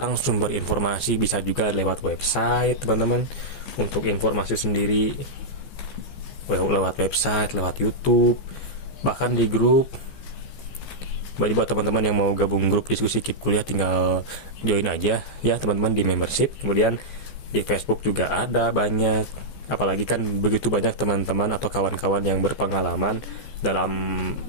sumber informasi, bisa juga lewat website, teman-teman, untuk informasi sendiri. Lewat website, lewat YouTube, bahkan di grup. Jadi buat teman-teman yang mau gabung grup diskusi KIP kuliah, tinggal join aja ya, teman-teman, di membership. Kemudian di Facebook juga ada banyak. Apalagi kan begitu banyak teman-teman atau kawan-kawan yang berpengalaman dalam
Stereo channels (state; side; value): late; right; 14 ms